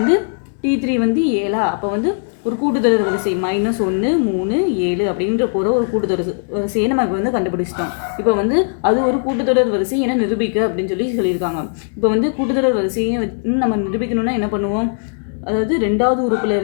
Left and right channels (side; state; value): right; silent; digital silence